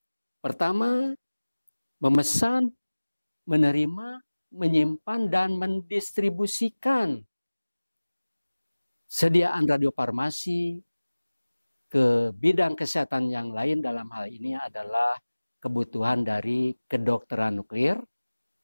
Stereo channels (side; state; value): both; inverted; correlation -1.00